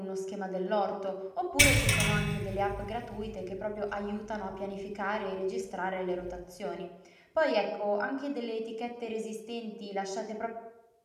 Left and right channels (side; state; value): both; identical; correlation 1.00